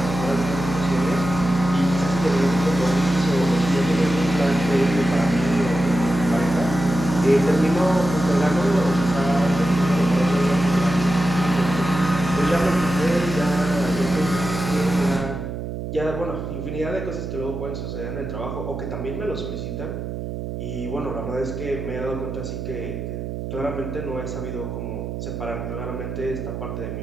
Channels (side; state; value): right; noise; hum, 6 dB below the sound